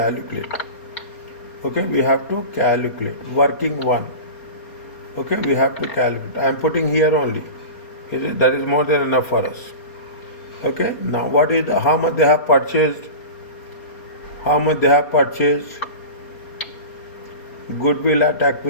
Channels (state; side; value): late; right; 4.3 ms